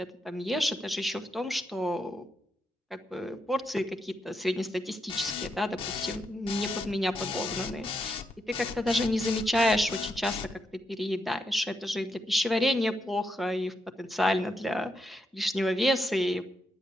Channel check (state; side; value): normal; both; correlation 0.82